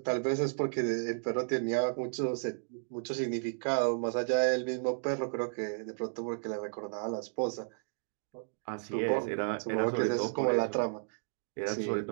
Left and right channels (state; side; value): silent; left; digital silence